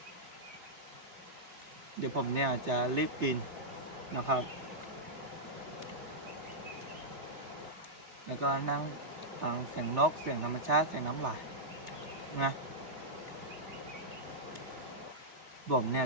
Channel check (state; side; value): late; left; 3.3 ms